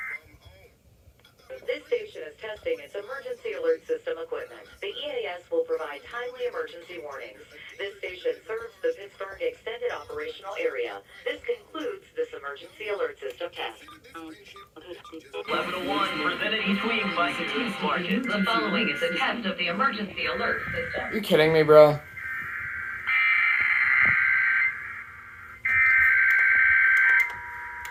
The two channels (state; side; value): identical; both; correlation 1.00